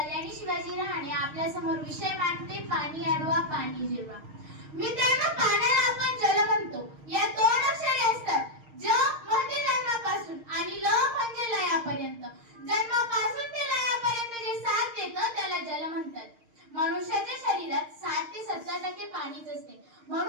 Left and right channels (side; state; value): left; late; 6.5 ms